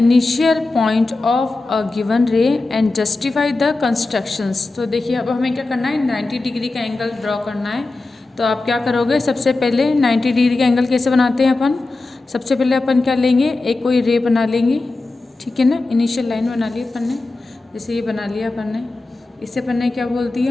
point of a given रे एंड जस्टिफाई द कंस्ट्रक्शंस। तो देखिए अब हमें क्या करना है, 90 डिग्री का एंगल ड्रॉ करना है। तो आप क्या करोगे, सबसे पहले 90 डिग्री का एंगल कैसे बनाते हैं अपन, सबसे पहले अपन क्या लेंगे, एक कोई रे बना लेंगे, ठीक है ना। इनिशियल लाइन बना ली अपन ने, जैसे ये बना लिया अपन ने। इसे अपन ने क्या बोल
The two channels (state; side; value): quieter; right; 3.3 dB